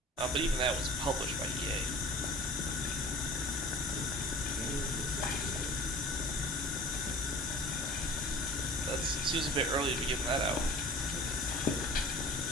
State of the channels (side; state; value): both; normal; correlation 0.43